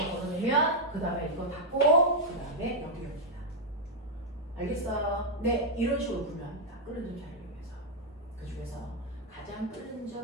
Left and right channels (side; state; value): both; normal; correlation -0.03